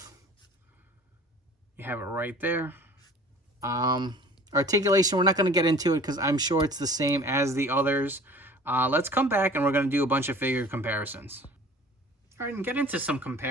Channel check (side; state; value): both; normal; correlation 0.46